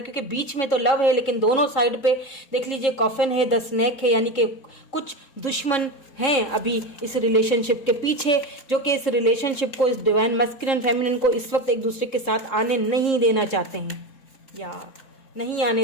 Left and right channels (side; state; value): right; late; 3.7 ms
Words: बीच में तो लव है लेकिन दोनों साइड पे देख लीजिए कॉफिन है, द स्नेक है, यानी कि कुछ दुश्मन हैं अभी इस रिलेशनशिप के पीछे, जो कि इस रिलेशनशिप को, इस डिवाइन मस्कुलिन फेमिनिन को इस वक्त एक दूसरे के साथ आने नहीं देना चाहते हैं, या नहीं